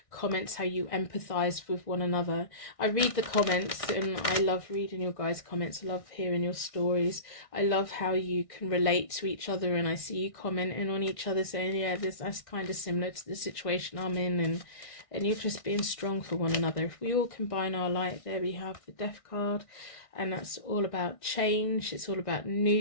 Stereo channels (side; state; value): right; late; 1.6 ms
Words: comments, how you empathize with one another. I read the comments and I love reading your guys' comments. I love hearing your stories. I love how you can relate to each other, and I see you commenting on each other saying, yeah, that's kind of similar to the situation I'm in, and you're just being strong for one another. If we all combine our light, there we have the Death card, and that's all about change. It's all about